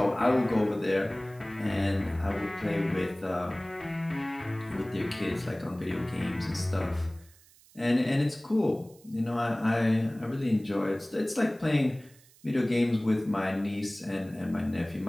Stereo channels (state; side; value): noise; right; hiss, 27 dB below the sound